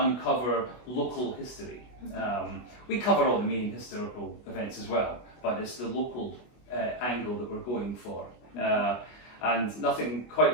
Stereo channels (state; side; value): late; right; 24 ms